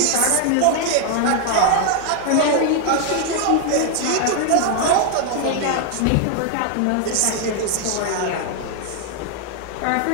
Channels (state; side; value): different; both; correlation 0.00